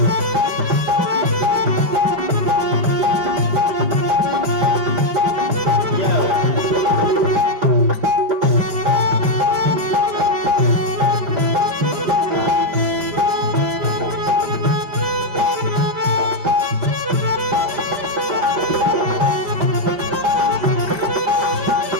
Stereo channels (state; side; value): late; left; 5.0 ms